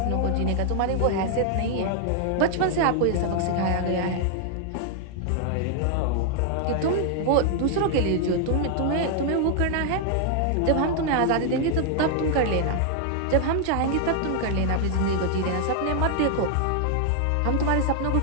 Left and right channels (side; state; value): both; different; correlation 0.00